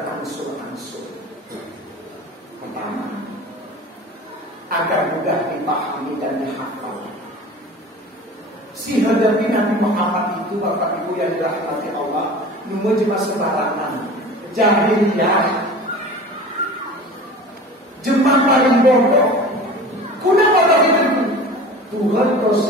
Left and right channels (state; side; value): normal; both; correlation 0.38